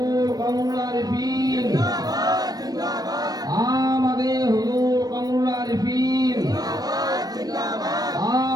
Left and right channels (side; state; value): left; late; 0.19 ms